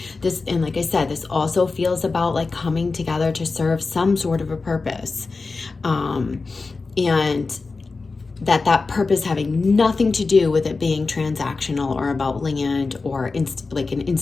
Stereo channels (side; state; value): right; quieter; 4.0 dB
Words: This, and like I said, this also feels about like coming together to serve some sort of a purpose, and that purpose having nothing to do with it being transactional or about land or like an